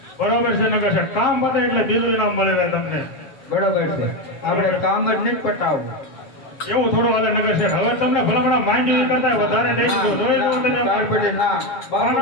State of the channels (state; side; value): late; right; 7.5 ms